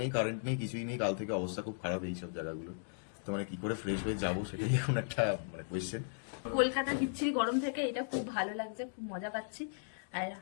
নেই, কারেন্ট নেই, কিছুই নেই। কাল থেকে অবস্থা খুব খারাপ এই সব জায়গাগুলো। তো মানে কি করে ফ্রেশ হয়ে যাবো সেটাই এখন একটা মানে কোয়েশ্চেন। কলকাতা বিচ্ছিরি গরম থেকে এটা খুব ভালো লাগছে, খুব মজা পাচ্ছি। আর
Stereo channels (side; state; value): right; silent; digital silence